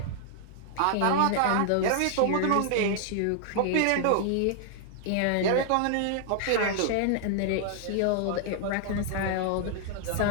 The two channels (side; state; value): both; different; correlation -0.01